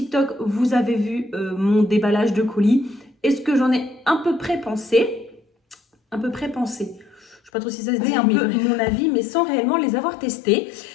vous avez vu mon déballage de colis et ce que j'en ai à peu près pensé. Je ne sais pas trop si ça se dit, un peu mon avis, mais sans réellement les avoir testés.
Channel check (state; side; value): drops out; right; at 7.5 s